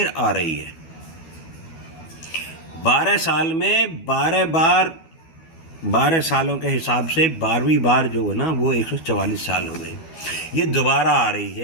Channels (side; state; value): right; late; 12 ms